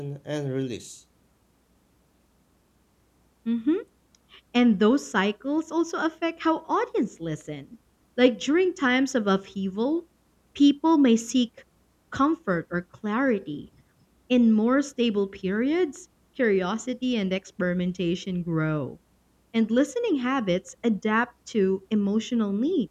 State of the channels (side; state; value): both; identical; correlation 1.00